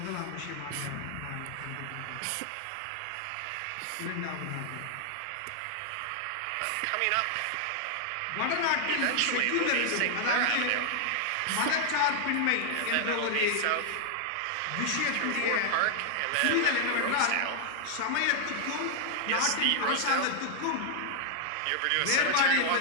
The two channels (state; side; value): different; both; correlation 0.00